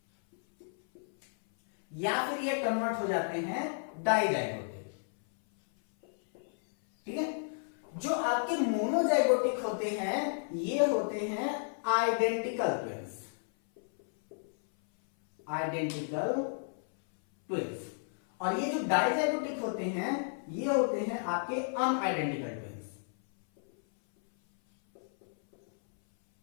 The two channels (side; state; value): right; silent; 56 dB below the other